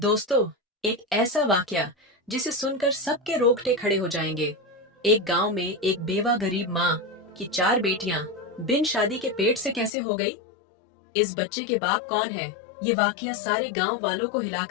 एक ऐसा वाकया जिसे सुनकर सबके रोंगटे खड़े हो जाएंगे। एक गांव में एक बेवा गरीब माँ की 4 बेटियां बिन शादी के पेट से कैसे हो गई? इस बच्चे के बाप कौन है? ये वाकया सारे गांव वालों को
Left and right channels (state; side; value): drops out; right; at 9.9 s